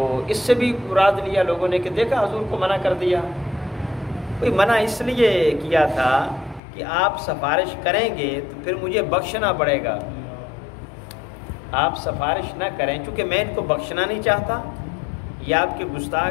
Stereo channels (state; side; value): drops out; right; at 6.6 s